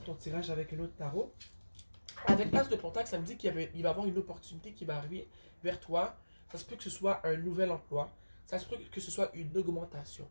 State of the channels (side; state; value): both; inverted; correlation -1.00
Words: ton tirage avec un autre tarot. Avec l'as de Pentacle, ça me dit qu'il va y avoir une opportunité qui va arriver vers toi. Ça se peut que ce soit un nouvel emploi. Ça se peut que ce soit une augmentation.